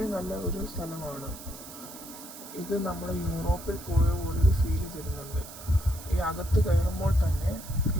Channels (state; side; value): noise; right; hiss, 14 dB below the sound